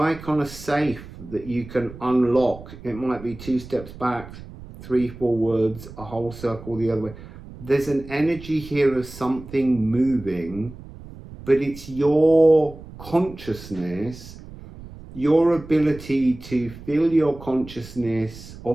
on a safe that you can unlock. It might be 2 steps back, 3 forwards, a whole circle the other way. There's an energy here of something moving, but it's your consciousness, your ability to fill your consciousness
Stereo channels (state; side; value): noise; right; rumble, 16 dB below the sound